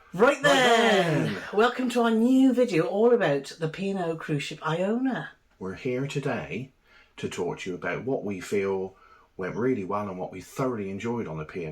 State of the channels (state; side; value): identical; both; correlation 1.00